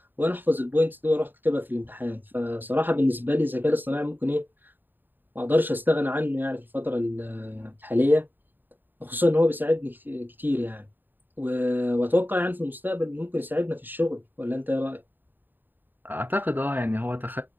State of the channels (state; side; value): late; left; 0.092 ms